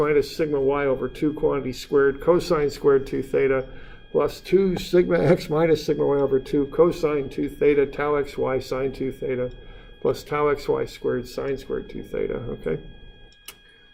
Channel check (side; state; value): both; identical; correlation 1.00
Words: sigma y over 2 quantity squared cosine squared 2 theta plus 2 sigma x minus sigma y over 2 cosine 2 theta tau xy sine 2 theta plus tau xy squared sine squared 2 theta, okay?